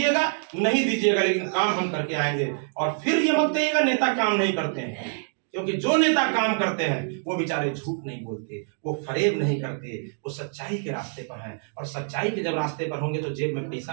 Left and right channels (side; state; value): left; silent; 61 dB below the other